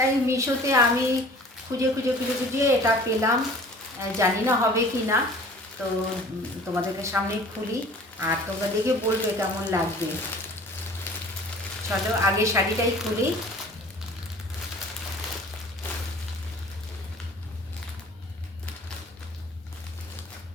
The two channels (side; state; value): both; normal; correlation 0.47